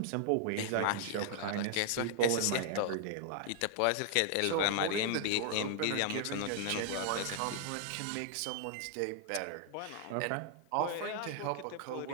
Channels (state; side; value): different; both; correlation -0.01